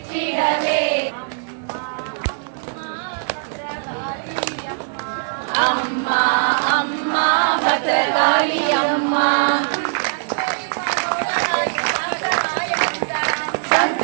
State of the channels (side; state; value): left; silent; digital silence